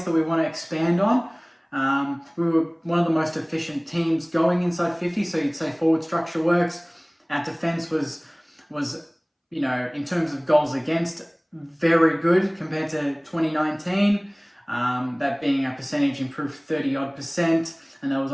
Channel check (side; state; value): both; identical; correlation 1.00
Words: that we want to expand on. We were one of the most efficient teams going inside 50, so you'd say forward structure works. Our defence was in terms of goals against, very good compared to 2019. That being our percentage improved 30-odd%, and that was